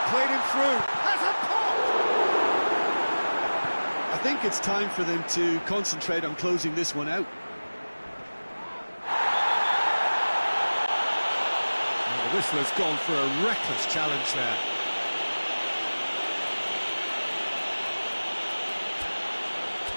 played him through. Has a pop! I think it's time for them to concentrate on closing this one out. And the whistler's gone for a reckless challenge there.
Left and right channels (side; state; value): both; inverted; correlation -1.00